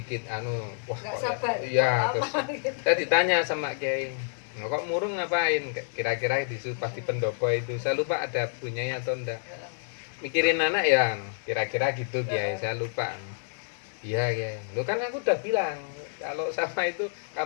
nggak sabar iya terus gitu. Saya ditanya sama Kiai, kok murung ngapain, kira-kira pas di pendopo itu saya lupa ada punyanya atau enggak, mikirin anak ya kira-kira gitu Kiai, saya lupa. Iya Kiai, lu kan aku udah bilang kalau sama itu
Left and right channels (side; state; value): right; silent; 59 dB below the other